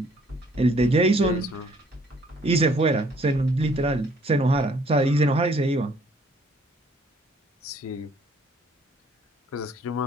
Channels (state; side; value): normal; both; correlation 0.61